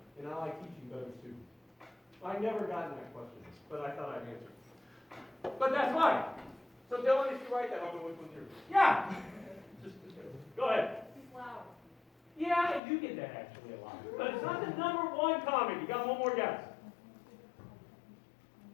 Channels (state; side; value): drops out; right; at 12.8 s